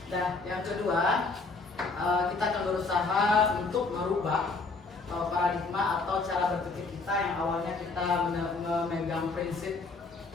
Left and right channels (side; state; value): right; quieter; 3.9 dB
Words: Nah yang kedua, kita akan berusaha untuk merubah paradigma atau cara berpikir kita yang awalnya kita memegang prinsip